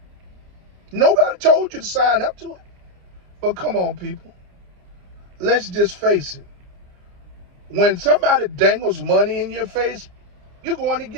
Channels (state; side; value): late; left; 29 ms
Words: Nobody told you to sign up to it. But come on, people. Let's just face it. When somebody dangles money in your face, you're going to